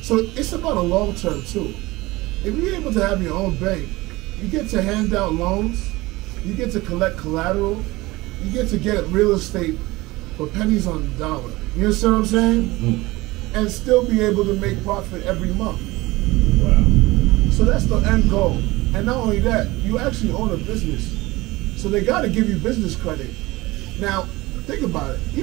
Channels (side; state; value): left; quieter; 20.5 dB